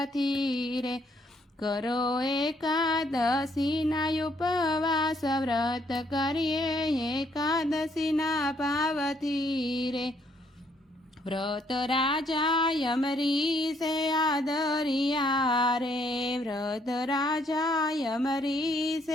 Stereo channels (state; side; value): normal; both; correlation 0.69